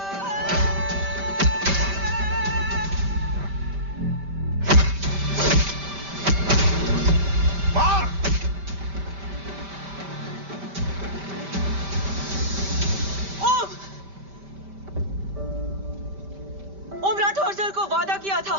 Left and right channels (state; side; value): late; left; 5.1 ms